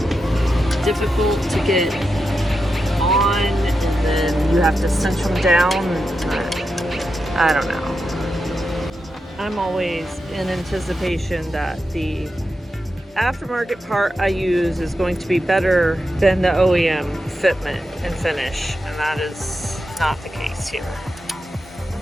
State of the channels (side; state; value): both; normal; correlation 0.88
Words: difficult to get you have to cinch them down. I don't know. I'm always in anticipation that the aftermarket part I use is going to be better than the OEM fitment and finish, and that is not the case here.